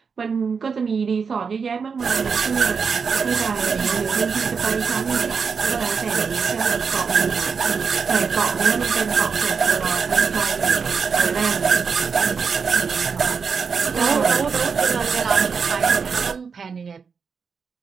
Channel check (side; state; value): left; quieter; 5.7 dB